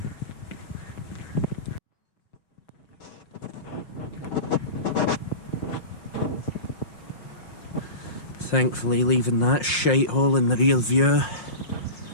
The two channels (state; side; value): late; right; 5.6 ms